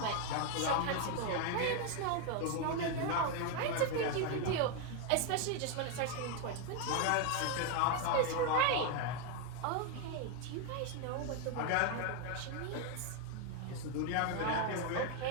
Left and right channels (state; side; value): different; both; correlation 0.01